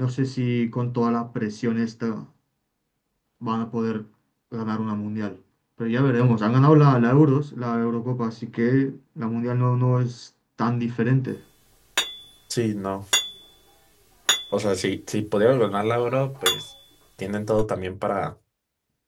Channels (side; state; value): both; identical; correlation 1.00